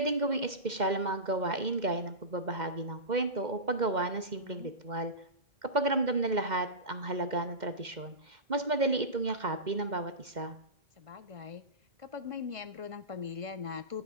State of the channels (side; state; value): left; late; 2.1 ms